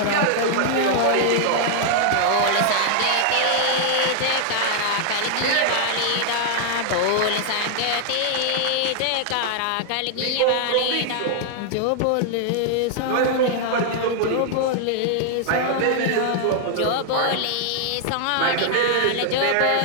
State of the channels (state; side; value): different; both; correlation -0.01